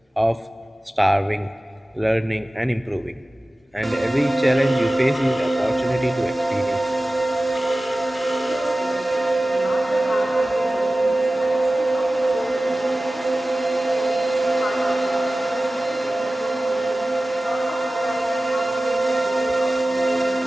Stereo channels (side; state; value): both; normal; correlation 0.96